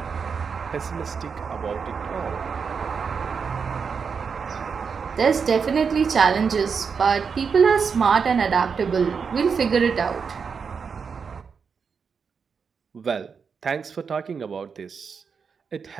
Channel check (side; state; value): left; quieter; 5.9 dB